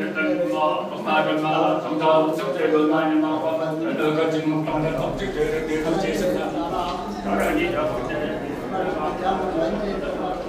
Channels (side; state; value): both; identical; correlation 1.00